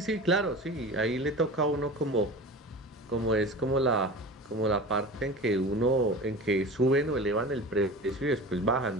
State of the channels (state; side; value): normal; both; correlation 0.34